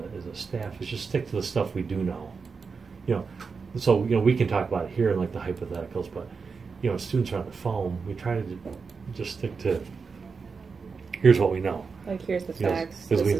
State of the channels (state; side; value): quieter; left; 5.1 dB